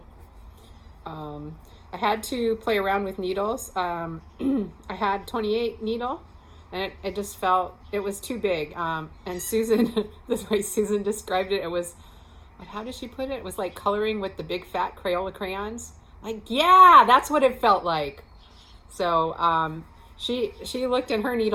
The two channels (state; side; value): identical; both; correlation 1.00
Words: I had to play around with needles. I had 28 needle, and it just felt it was too big. And Susan, the way Susan described it, it was, how did she put it? It was like coloring with the big fat Crayola crayons. Like, yeah, that's what it felt like. So she looked in her